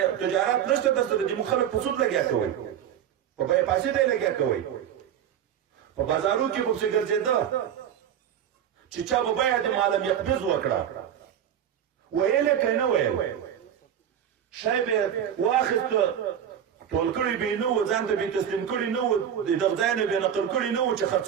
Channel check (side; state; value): left; quieter; 9.4 dB